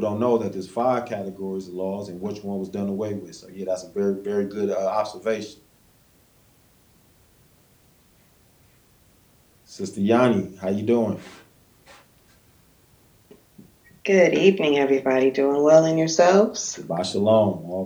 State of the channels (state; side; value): identical; both; correlation 1.00